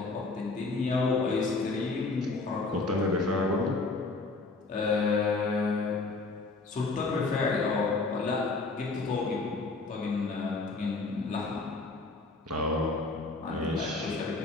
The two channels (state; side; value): quieter; right; 3.6 dB